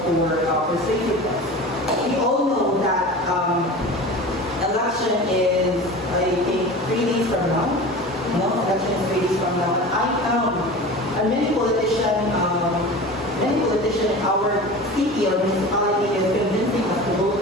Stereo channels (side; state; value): both; normal; correlation 0.34